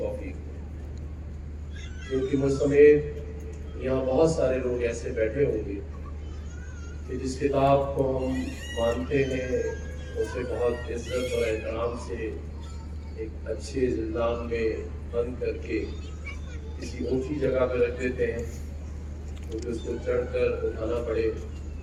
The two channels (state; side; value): identical; both; correlation 1.00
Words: دے، کیونکہ مجھ سمیت یہاں بہت سارے لوگ ایسے بیٹھے ہوں گے کہ جس کتاب کو ہم مانتے ہیں اسے بہت عزت اور احترام سے ایک اچھے زندان میں بند کر کے کسی اونچی جگہ پہ رکھ دیتے ہیں، کیونکہ اس کو چڑھ کر اٹھانا پڑے،